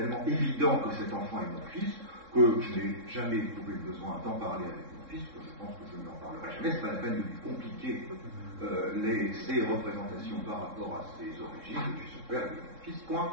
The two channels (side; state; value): left; late; 3.7 ms